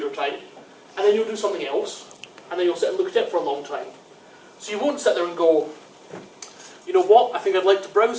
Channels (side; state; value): both; identical; correlation 1.00